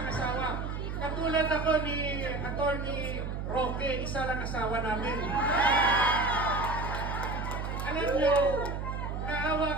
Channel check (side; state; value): right; noise; hum, 4 dB below the sound